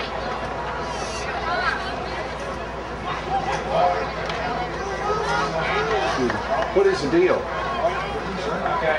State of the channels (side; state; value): both; identical; correlation 1.00